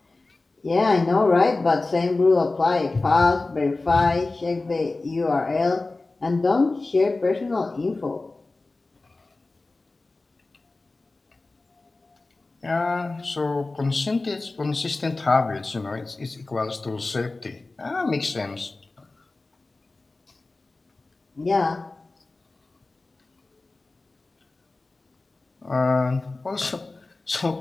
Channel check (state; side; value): quieter; right; 3.3 dB